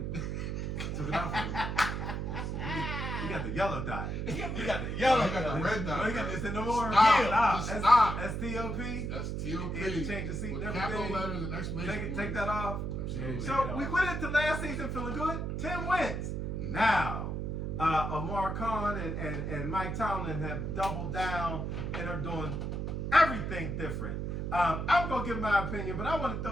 Took it off of it. You got the yellow dot. You got the Yellow, yellow. you got the red dot. No, you got this in no more. Stop. Stop. That's T-O-P. That's T.O.P. You had to change the seat With and capital everything. letters and exclamation Take that off. Absolutely. So we went into last season feeling good. 10 wins. Now, Amar Khan and Mike Tomlin have doubled down and are doing everything different. I'm going to give my opinion, but I want to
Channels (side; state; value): right; noise; hum, 2 dB below the sound